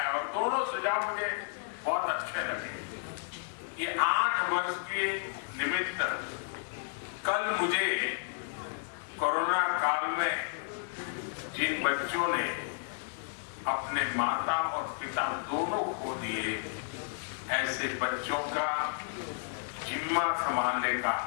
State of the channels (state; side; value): silent; right; digital silence